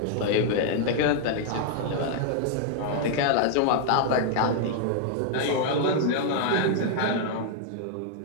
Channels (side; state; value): both; different; correlation 0.00